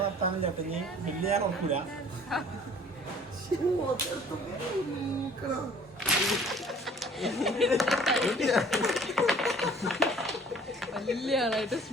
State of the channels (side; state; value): both; normal; correlation 0.52